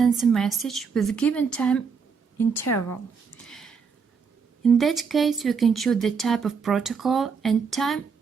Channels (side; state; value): left; quieter; 5.7 dB